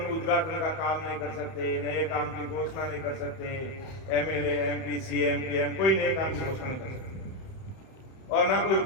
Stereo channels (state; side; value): late; right; 31 ms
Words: उद्घाटन का काम नहीं कर सकते, नए काम की घोषणा नहीं कर सकते, एमएलए एमपी सीएम पीएम कोई नए काम की घोषणा नहीं कर सकते, और ना कोई